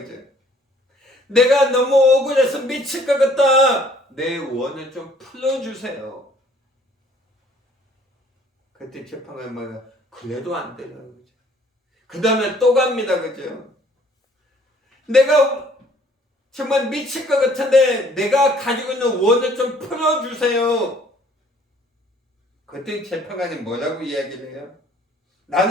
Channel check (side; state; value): both; normal; correlation 0.58